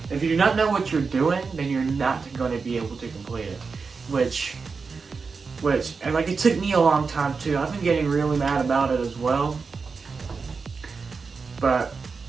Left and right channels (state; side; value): quieter; left; 4.9 dB